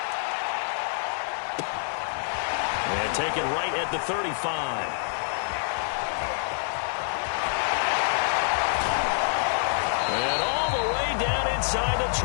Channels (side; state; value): right; silent; digital silence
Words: And taken right at the 35. And all the way down inside the